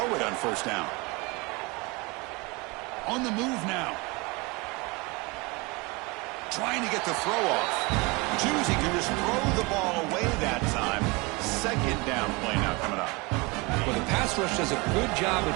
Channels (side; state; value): left; quieter; 26.4 dB